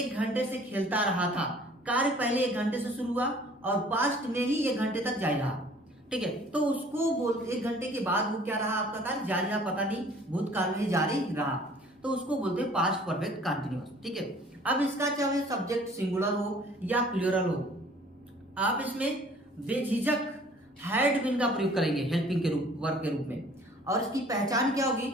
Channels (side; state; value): both; normal; correlation 0.53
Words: घंटे से खेलता रहा था, कार्य पहले 1 घंटे से शुरू हुआ और पास्ट में ही 1 घंटे तक जारी रहा। ठीक है, तो उसको बोलते 1 घंटे के बाद वो क्या रहा, आपका कार्य जारी रहा, पता नहीं, भूतकाल में ही जारी रहा, तो उसको बोलते हैं पास्ट परफेक्ट कंटिन्यूअस। ठीक है, अब इसका चाहे सब्जेक्ट सिंगुलर हो या प्लूरल हो, आप इसमें बेझिझक हैड बीन का प्रयोग करेंगे हेल्पिंग के रूप, वर्ब के रूप में। और इसकी पहचान क्या होगी,